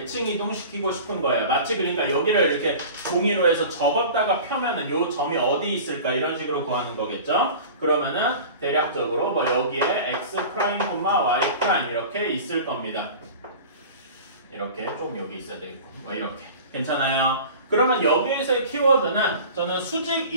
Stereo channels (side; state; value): both; inverted; correlation -0.38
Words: 이동시키고 싶은 거예요. 마치 그러니까 여기를 이렇게 종이로 해서 접었다가 펴면은 요 점이 어디 있을까 이런 식으로 구하는 거겠죠. 그러면은 대략적으로 뭐 여기에 x 프라임, y 프라임 이렇게 있을 겁니다. 이렇게 좀 여기 있어야 되겠고 뭐 이렇게 괜찮아요. 그러면 여기에서의 키워드는 저는 수직